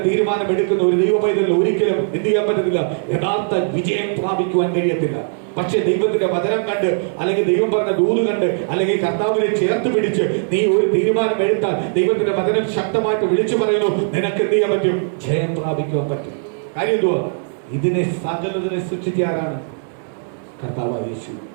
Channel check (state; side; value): silent; left; 66 dB below the other